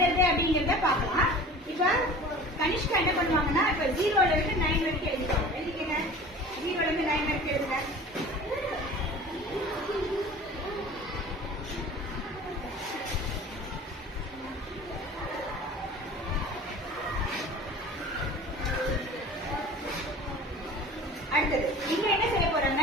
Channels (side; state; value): both; normal; correlation 0.41